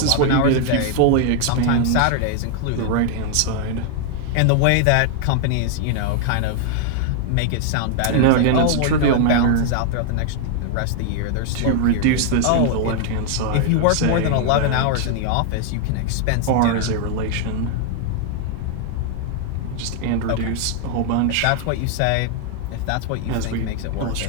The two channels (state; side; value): different; both; correlation 0.00